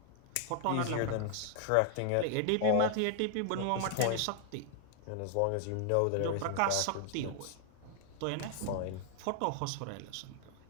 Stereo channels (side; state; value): both; different; correlation 0.00